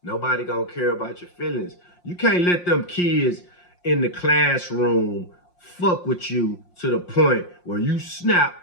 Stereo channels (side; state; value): right; late; 5.6 ms